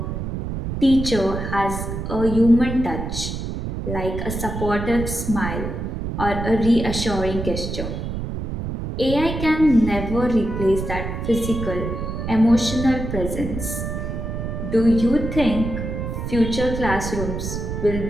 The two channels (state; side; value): noise; right; rumble, 5 dB below the sound